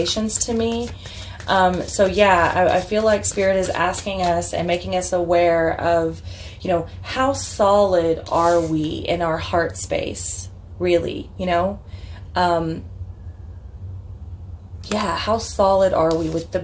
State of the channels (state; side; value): identical; both; correlation 1.00